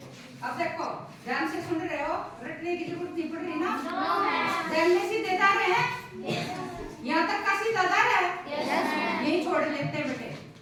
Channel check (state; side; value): identical; both; correlation 1.00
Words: अब देखो ध्यान से सुन रहे हो, रटने की जरूरत नहीं पड़ रही ना? ध्यान में सीधे जा रहे हैं, यहाँ तक का सीधा जा रहा है, यही छोड़ लेते हैं बेटे,